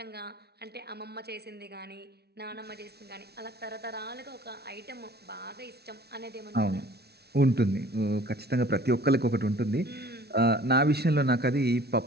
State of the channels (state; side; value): late; left; 0.47 ms